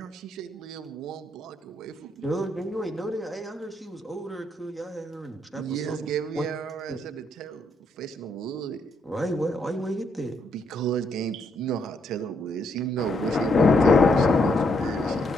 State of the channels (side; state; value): both; normal; correlation 0.75